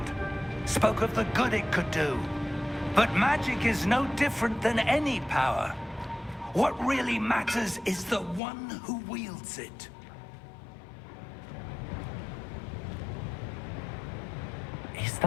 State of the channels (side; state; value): right; drops out; at 8.4 s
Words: Spoke of the good it could do. But magic is no different than any power. What really matters is the one who wields it. Is